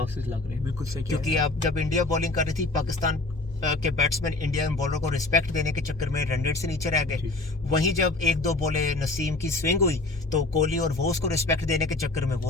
लग रहे हैं। बिल्कुल सही, क्योंकि अब जब इंडिया बॉलिंग कर रही थी, पाकिस्तान के बैट्समैन इंडिया बॉलर को रिस्पेक्ट देने के चक्कर में रन रेट से नीचे रह गए। वहीं जब 1-2 बॉलें नसीम की स्विंग हुई तो कोहली और वो उसको रिस्पेक्ट देने के चक्कर में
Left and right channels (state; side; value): quieter; right; 3.1 dB